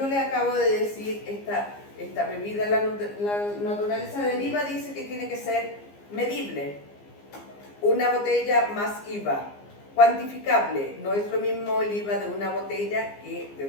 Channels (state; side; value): late; right; 15 ms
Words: le acabo de decir esta bebida, la naturaleza del IVA dice que tiene que ser medible. Una botella más IVA, cuantificable. No es lo mismo el IVA de una botella que de